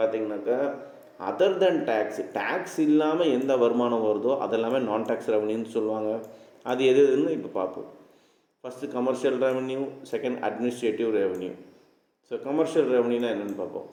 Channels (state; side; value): identical; both; correlation 1.00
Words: other தென் tax இல்லாமல் எந்த வருமானம் வருதோ அதெல்லாமே நான் டேக்ஸ் ரெவன்யூன்னு சொல்லுவாங்க. அது எதுன்னு இப்போ பார்ப்போம். First commercial revenue, second administrative revenue. So commercial ரெவன்யூனா என்னென்னு பார்ப்போம்.